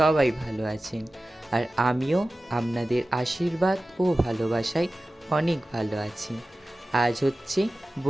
ভালো আছেন, আর আমিও আপনাদের আশীর্বাদ ও ভালোবাসায় অনেক ভালো আছি। আজ হচ্ছে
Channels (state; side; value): normal; both; correlation 0.95